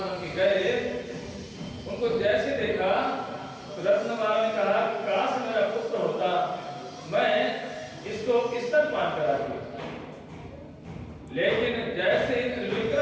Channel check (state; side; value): identical; both; correlation 1.00